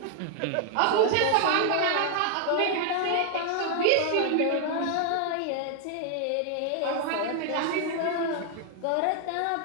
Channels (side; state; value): both; different; correlation 0.00